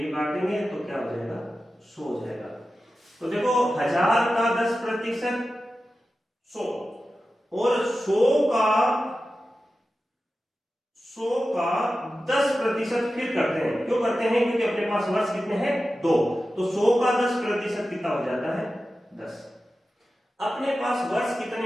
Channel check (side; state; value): both; normal; correlation 0.93